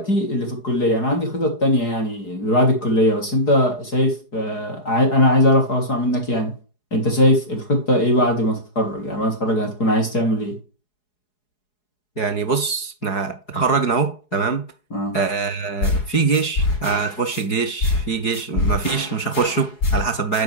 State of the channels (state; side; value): late; right; 4.8 ms